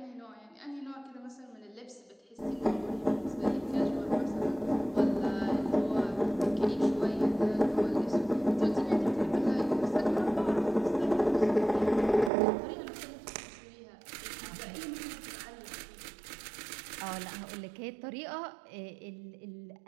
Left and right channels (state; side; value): drops out; left; at 12.3 s